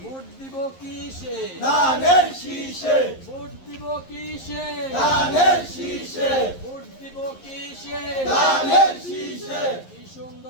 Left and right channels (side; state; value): right; late; 11 ms